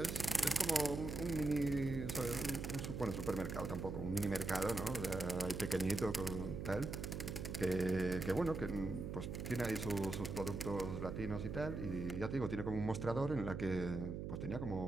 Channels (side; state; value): right; noise; hum, 5 dB below the sound